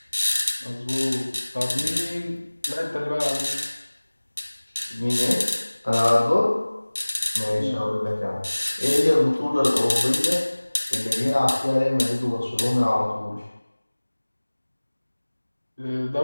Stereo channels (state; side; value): inverted; both; correlation -1.00